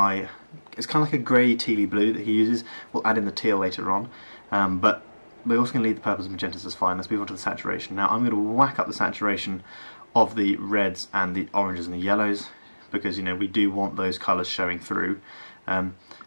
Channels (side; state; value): both; inverted; correlation -1.00